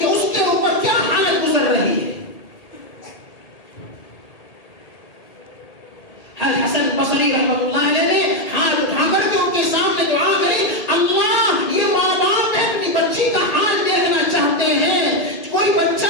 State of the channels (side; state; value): right; late; 1.9 ms